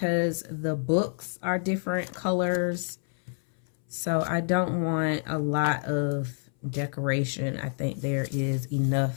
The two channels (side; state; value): right; silent; 59 dB below the other